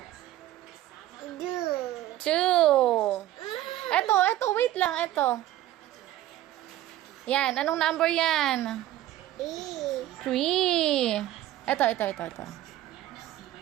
Two. 2. Eto, wait lang, eto. Yan, anong number yan? Three. 3. Eto.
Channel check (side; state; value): left; quieter; 14.2 dB